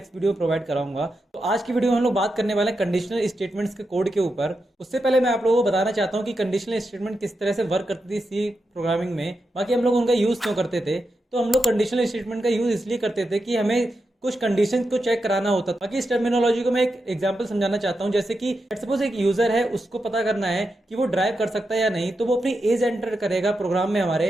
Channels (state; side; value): normal; both; correlation 0.87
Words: वीडियो में प्रोवाइड कराऊंगा। तो आज की वीडियो में हम लोग बात करने वाले हैं कंडीशनल स्टेटमेंट्स के कोड के ऊपर। उससे पहले मैं आप लोगों को बताना चाहता हूँ कि कंडीशनल स्टेटमेंट किस तरह से वर्क करती थी सी प्रोग्रामिंग में, बाकी हम लोग उनका यूज़ क्यों करते थे। तो हम लोग कंडीशनल स्टेटमेंट का यूज़ इसलिए करते थे कि हमें कुछ कंडीशन को चेक कराना होता था। बाकी इस टर्मिनोलॉजी को मैं एक एग्जांपल समझाना चाहता हूँ। जैसे कि सपोज एक यूजर है, उसको पता करना है कि वो ड्राइव कर सकता है या नहीं, तो वो अपनी एज एंटर करेगा प्रोग्राम में